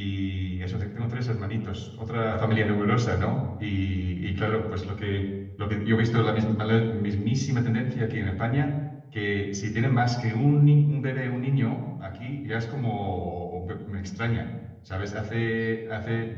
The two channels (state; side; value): identical; both; correlation 1.00